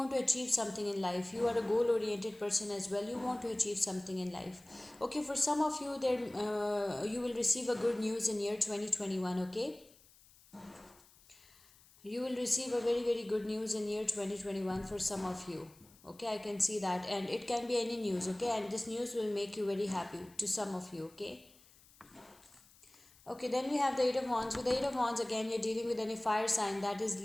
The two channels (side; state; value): left; noise; hiss, 26 dB below the sound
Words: to achieve something in life. You are a goal oriented person as well. You want to achieve something in life. Okay, for some of you there, you will receive a good news in year 2021. Okay, you will receive a very good news in year 2021 for some of you. Okay, I can see that, and it can be any news. Okay, and this news will make you very happy to some of you. Okay. Okay, then we have the Eight of Wands. With the Eight of Wands, again, you're dealing with any fire sign, that is